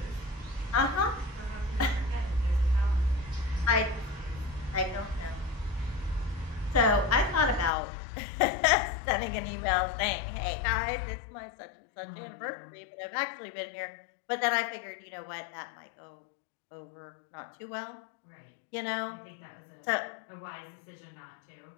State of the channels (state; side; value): drops out; right; at 7.7 s